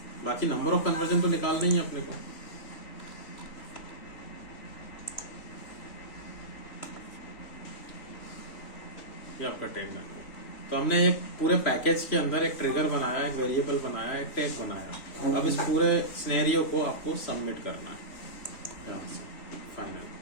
बाकी नंबर ऑफ कन्वर्जन तो निकालना ही है अपने को। ये आपका टैग बन गया। तो हमने एक पूरे पैकेज के अंदर एक ट्रिगर बनाया, एक वेरिएबल बनाया, एक टैग बनाया। अब इस पूरे सिनेरियो को आपको सबमिट करना है यहाँ से फाइनल।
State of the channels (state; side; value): late; right; 3.0 ms